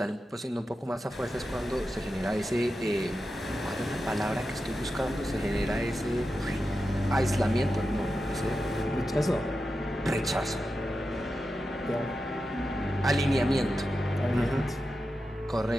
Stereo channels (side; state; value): both; normal; correlation 0.90